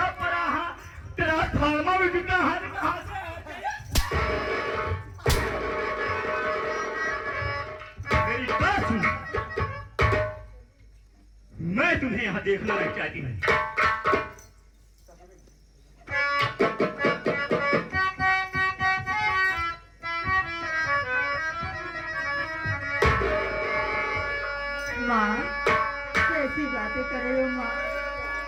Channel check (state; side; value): identical; both; correlation 1.00